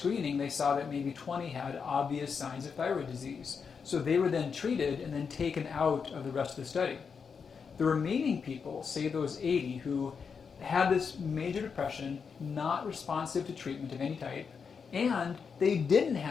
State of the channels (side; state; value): right; quieter; 6.0 dB